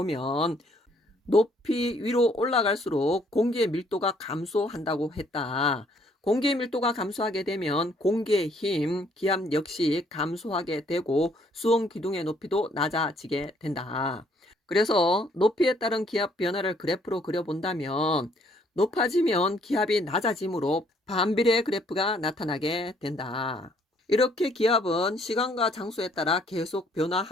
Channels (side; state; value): both; normal; correlation 0.65